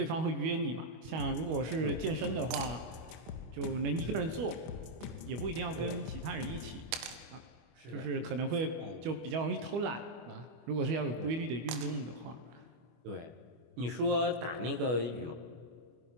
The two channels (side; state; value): left; late; 25 ms